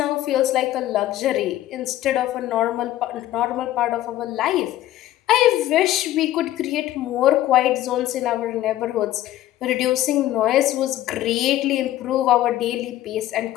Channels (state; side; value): quieter; right; 14.1 dB